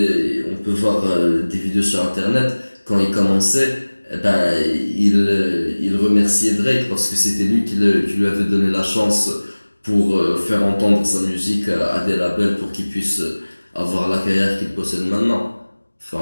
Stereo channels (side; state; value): both; inverted; correlation -1.00